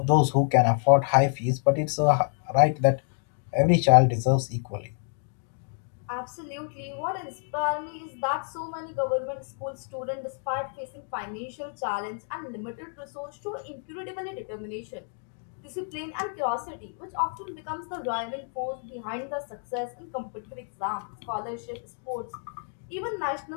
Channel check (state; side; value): silent; right; 59 dB below the other